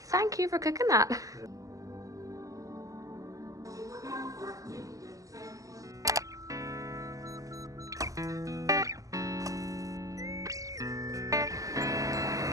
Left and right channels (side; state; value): left; late; 0.16 ms